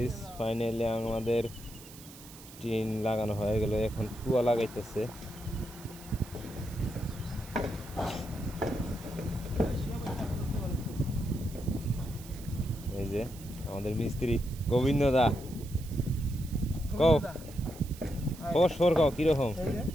finally আমাদের টিন লাগানো হয়ে গেল। এখন টুয়া লাগাইতেছে। এই যে আমাদের মিস্ত্রি গোবিন্দ দা, কও খবর কও কিরকম?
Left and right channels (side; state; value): right; noise; hiss, 18 dB below the sound